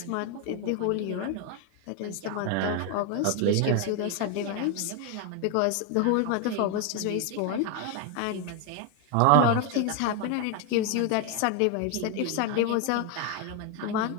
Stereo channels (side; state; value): both; different; correlation 0.01